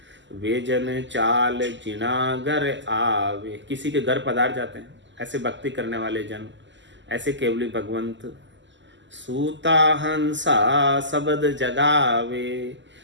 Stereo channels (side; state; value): left; late; 0.54 ms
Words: वे जन चाल जिना घर आवे, किसी के घर पधार जाते हैं ऐसे भक्ति करने वाले जन, ऐसे केवली भगवंत। सूता हंसा सबद जगावे,